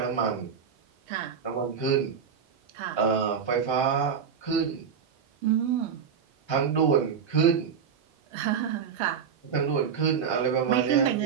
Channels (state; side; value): quieter; left; 7.0 dB